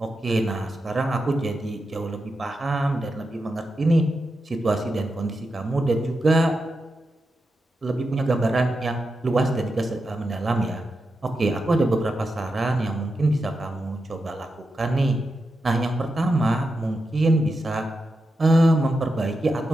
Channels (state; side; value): normal; both; correlation 0.88